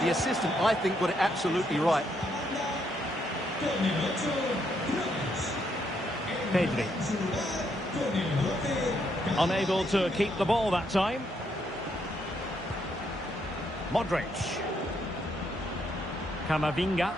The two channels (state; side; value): normal; both; correlation 0.75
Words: the assistant, I think, got it absolutely right. Pedri. Unable to keep the ball that time. Modric. Camavinga.